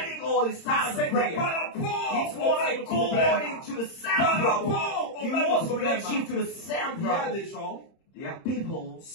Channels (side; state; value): right; late; 30 ms